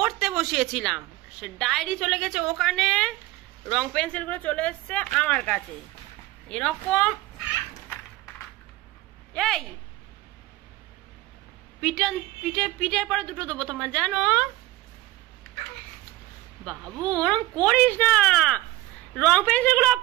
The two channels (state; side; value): quieter; left; 17.7 dB